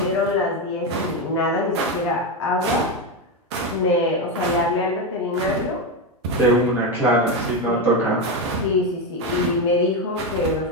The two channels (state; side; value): normal; both; correlation 0.12